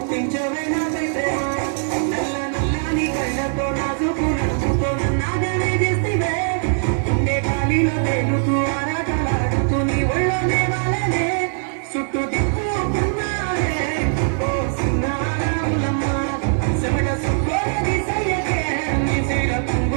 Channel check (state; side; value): silent; left; 55 dB below the other